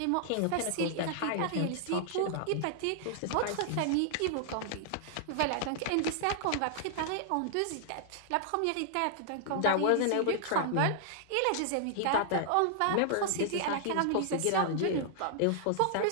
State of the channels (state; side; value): different; both; correlation -0.01